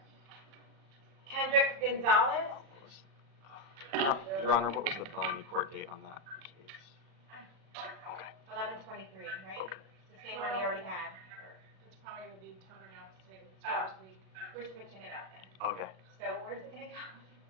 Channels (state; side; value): late; left; 37 ms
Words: Kendrick Gonzalez. Your Honor, what was the felony court date on that case? Okay. 11/23, right? It's the same one he already had. It's probably going to be toned down to say We're switching it up then. Okay. So where's it going to go?